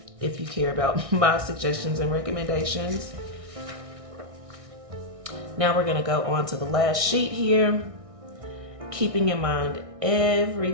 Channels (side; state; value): left; late; 1.6 ms